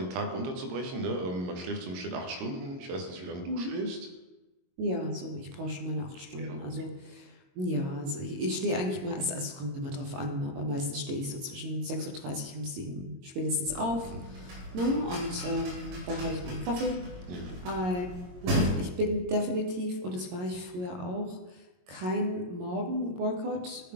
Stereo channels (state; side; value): late; left; 22 ms